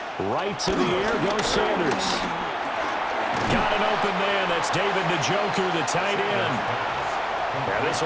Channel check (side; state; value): both; identical; correlation 1.00